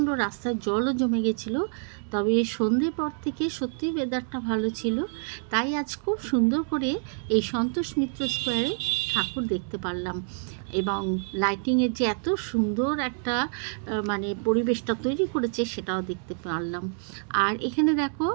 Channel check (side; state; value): left; silent; 56 dB below the other